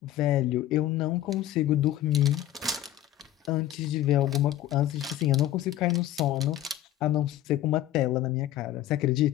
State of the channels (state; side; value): quieter; right; 12.9 dB